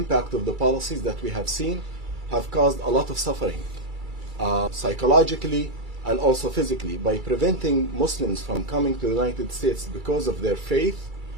of the policies that we have seen have caused a lot of suffering, psychologically and also physically. By preventing Muslims from coming to the United States because of their faith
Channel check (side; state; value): left; late; 2.3 ms